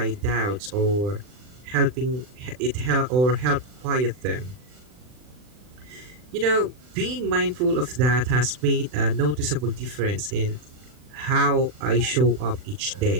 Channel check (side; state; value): left; late; 40 ms